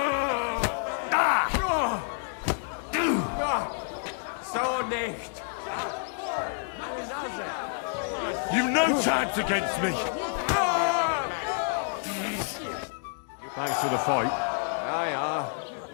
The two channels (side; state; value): right; silent; 59 dB below the other